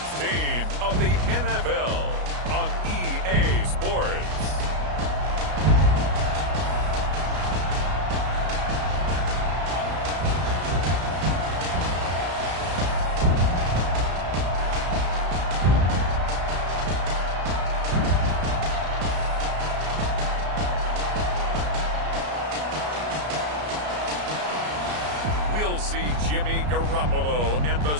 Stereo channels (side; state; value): left; late; 33 ms